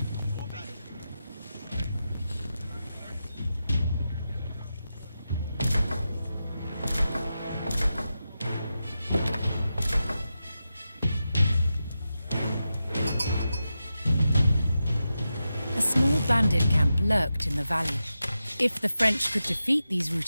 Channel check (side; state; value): both; inverted; correlation -0.90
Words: A small bandit camp lurked in the valley. If the French could defeat these